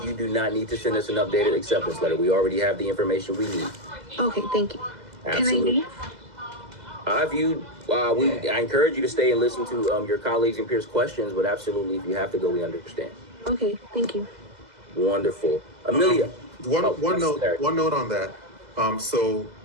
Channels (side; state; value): left; late; 2.0 ms